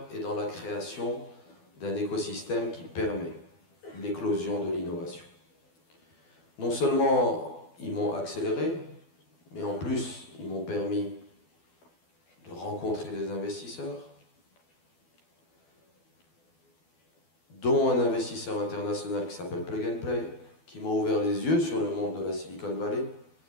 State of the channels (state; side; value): late; right; 12 ms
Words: et dans la création d'un écosystème qui permet l'éclosion de l'innovation. Non seulement ils m'ont accéléré, mais en plus ils m'ont permis de rencontrer des investisseurs, dont un investisseur international qui s'appelle Plug and Play, qui m'a ouvert les yeux sur le monde de la Silicon Valley,